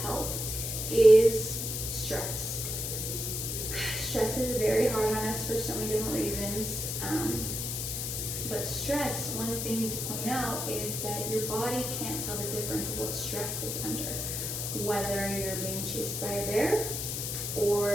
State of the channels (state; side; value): noise; left; hiss, 3 dB below the sound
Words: health is stress. Stress is very hard on us for so many different reasons. But stress, one thing to point out is that your body can't tell the difference of what stress it's under. Whether you're being chased by a bear,